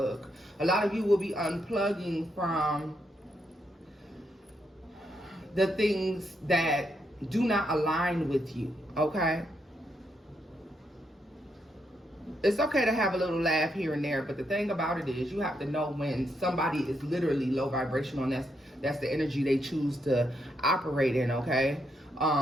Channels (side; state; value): both; normal; correlation 0.79